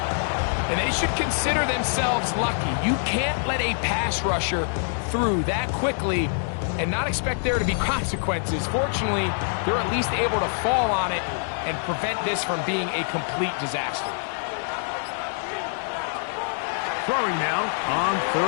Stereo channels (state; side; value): silent; right; digital silence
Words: And they should consider themselves lucky. You can't let a pass rusher through that quickly and not expect there to be consequences. Fortunately, they're at least able to fall on it and prevent this from being a complete disaster. Throwing now on